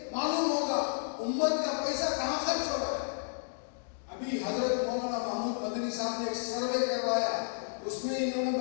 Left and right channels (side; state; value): right; silent; digital silence